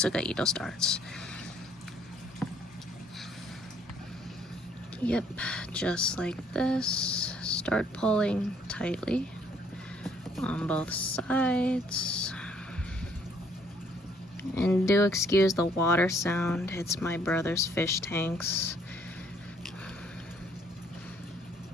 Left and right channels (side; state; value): both; normal; correlation 0.65